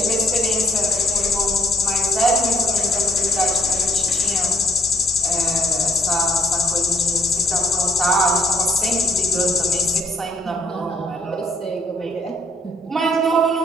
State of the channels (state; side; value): normal; both; correlation 0.69